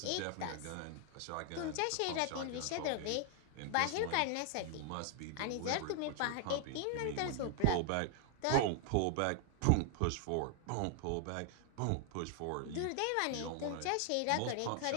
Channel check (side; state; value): both; different; correlation 0.00